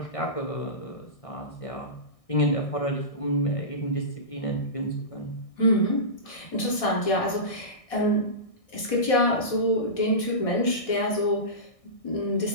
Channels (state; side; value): late; right; 1.6 ms